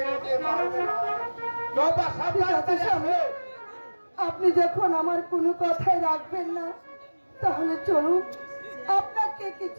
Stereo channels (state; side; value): inverted; both; correlation -1.00